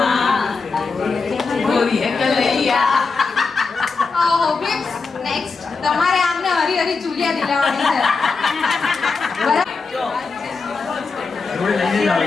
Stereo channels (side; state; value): right; quieter; 4.5 dB